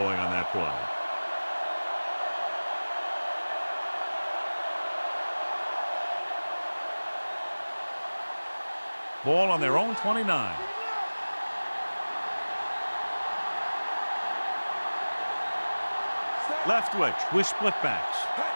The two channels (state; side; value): inverted; both; correlation -1.00